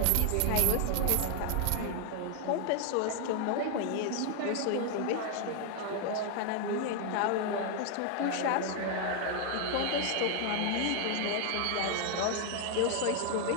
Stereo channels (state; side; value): different; both; correlation 0.00